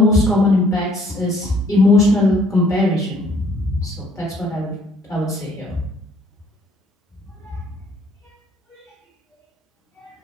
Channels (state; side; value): normal; both; correlation 0.61